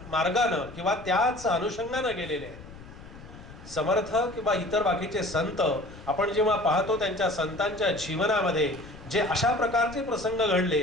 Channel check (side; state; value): left; noise; rumble, 17 dB below the sound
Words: किंवा त्याच अनुषंगानं गेलेले आहेत. समर्थ किंवा इतर बाकीचे संत आपण जेव्हा पाहतो त्यांच्या संतांच्या जीवनामध्ये जे अशा प्रकारचे प्रसंग